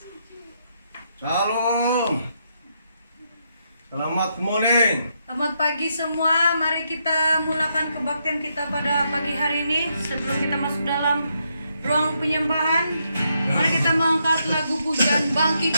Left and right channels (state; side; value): inverted; both; correlation -0.79